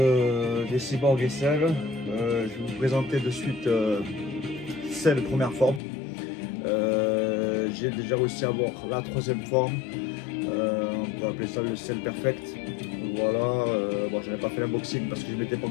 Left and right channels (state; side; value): drops out; right; at 5.8 s